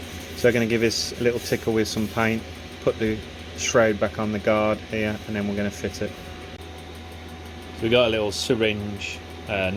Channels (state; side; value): identical; both; correlation 1.00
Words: So I'm going to give this a little tickle with some paint, put the shroud back on the guard here, and then we're going to fit it. So we got a little syringe,